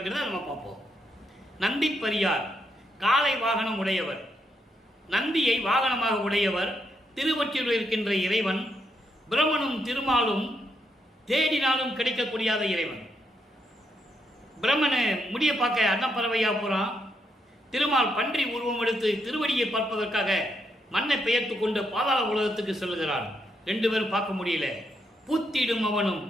நம்ம பார்ப்போம். நந்தி பரியார் காலை வாகனம் உடையவர், நந்தியை வாகனமாக உடையவர் திருவொற்றியூரில் இருக்கின்ற இறைவன். பிரம்மனும் திருமாலும் தேடினாலும் கிடைக்கக்கூடியாத இறைவன். பிரம்மனை முடிய பார்க்க அன்னப்பறவையா போறான். திருமால் பன்றி உருவம் எடுத்து திருவடியை பார்ப்பதற்காக மண்ணை பெயர்த்து கொண்டு பாதாள உலகத்துக்கு செல்கிறான். 2 பேரும் பார்க்க முடியல. பூத்திடும் அவனும்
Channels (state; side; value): normal; both; correlation 0.79